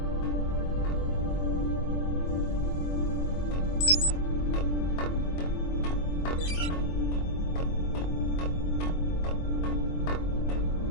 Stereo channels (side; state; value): right; late; 24 ms